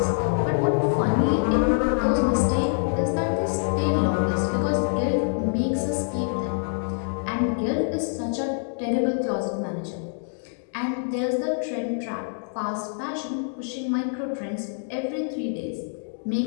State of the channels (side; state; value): right; silent; digital silence